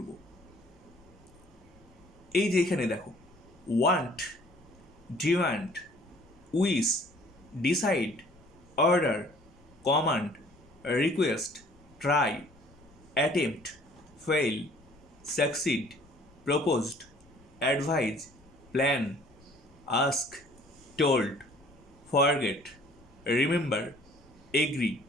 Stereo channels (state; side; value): noise; left; rumble, 28 dB below the sound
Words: এই যে এখানে দেখো, want, demand, wish, decide, order, command, request, try, attempt, fail, succeed, proposed, advise, plan, ask, told, forget, remember, agree,